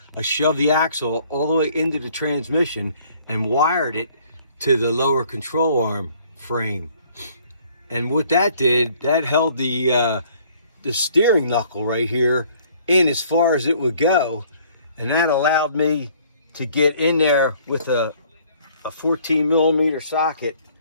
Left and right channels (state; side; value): inverted; both; correlation -0.59